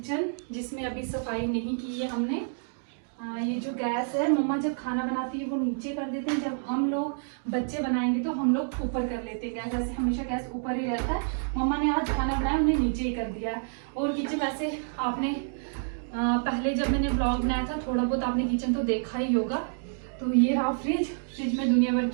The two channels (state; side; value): silent; left; digital silence